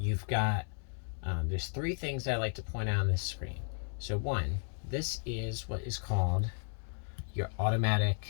got, there's 3 things I like to point out on this screen. So one, this is what is called your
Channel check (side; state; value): right; silent; 55 dB below the other